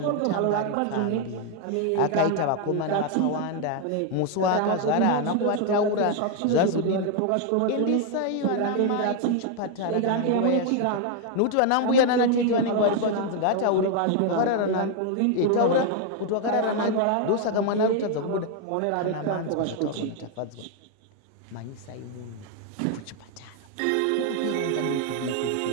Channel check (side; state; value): both; different; correlation 0.00